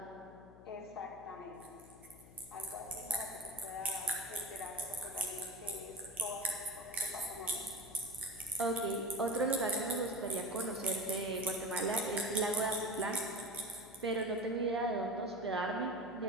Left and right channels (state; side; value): noise; left; hum, 20 dB below the sound